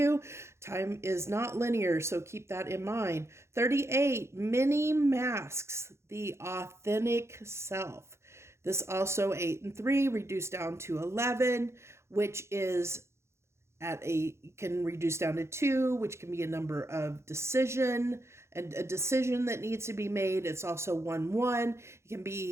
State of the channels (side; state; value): left; late; 0.13 ms